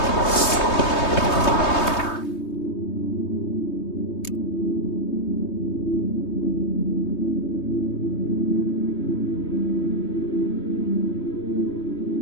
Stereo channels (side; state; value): right; late; 3.2 ms